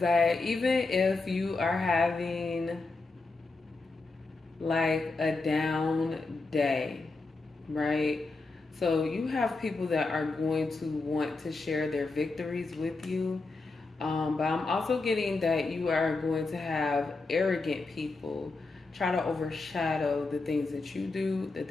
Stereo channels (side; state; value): right; quieter; 3.6 dB